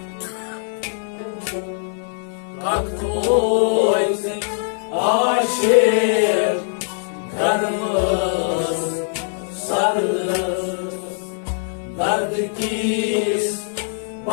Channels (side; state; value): right; silent; digital silence